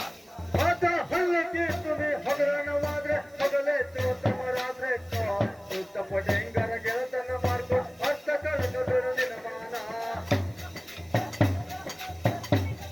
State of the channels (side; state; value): right; noise; hiss, 30 dB below the sound